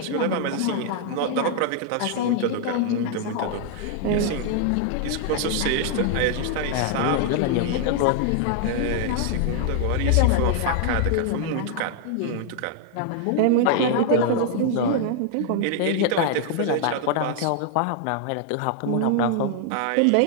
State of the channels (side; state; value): both; different; correlation 0.00